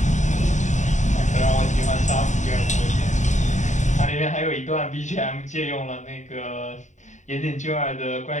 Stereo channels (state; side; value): late; right; 0.35 ms